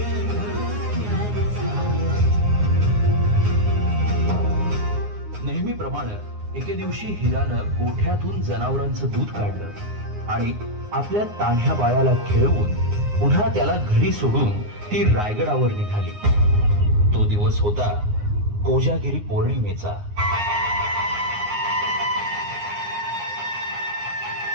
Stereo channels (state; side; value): late; left; 9.6 ms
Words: नेहमीप्रमाणे एके दिवशी हिरानं गोठ्यातून जनावरांचं दूध काढलं आणि आपल्या तान्ह्या बाळाला खेळवून पुन्हा त्याला घरी सोडून ती रायगडावर निघाली. तो दिवस होता कोजागिरी पौर्णिमेचा.